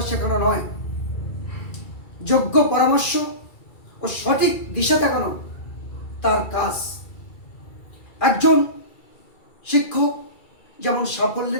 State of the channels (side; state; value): right; late; 2.3 ms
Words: শেখানো নয়, যোগ্য পরামর্শ ও সঠিক দিশা দেখানো তার কাজ। একজন শিক্ষক যেমন